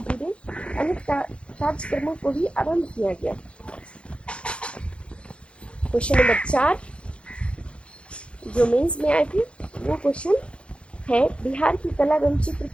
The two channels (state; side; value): late; right; 0.059 ms